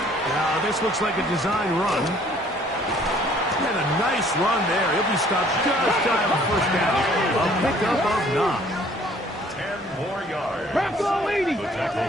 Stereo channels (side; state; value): both; normal; correlation 0.58